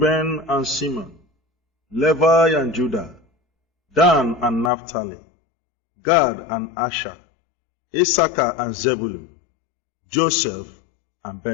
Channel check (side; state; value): right; drops out; at 4.7 s